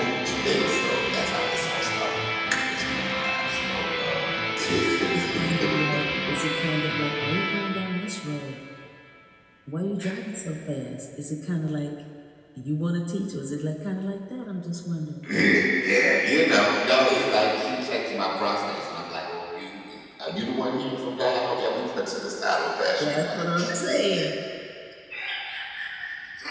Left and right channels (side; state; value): both; identical; correlation 1.00